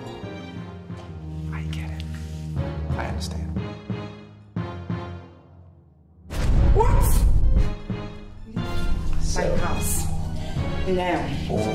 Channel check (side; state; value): both; identical; correlation 1.00